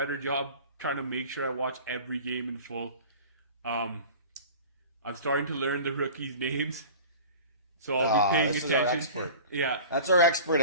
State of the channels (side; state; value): both; inverted; correlation -0.39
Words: job trying to make sure I watch every game in full. I'm starting to learn the rookies' names. So I'll be paying attention. Our expert. Yeah. That's our expert,